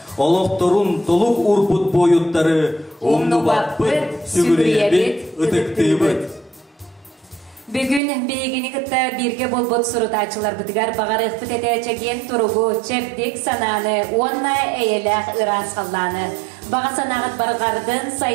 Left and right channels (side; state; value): left; drops out; at 8.0 s